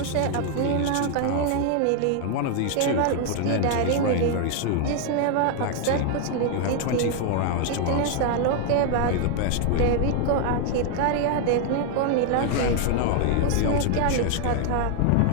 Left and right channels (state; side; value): different; both; correlation 0.00